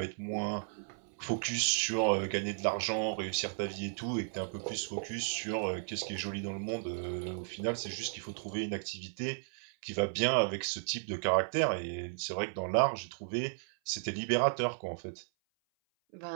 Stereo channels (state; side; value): silent; left; 55 dB below the other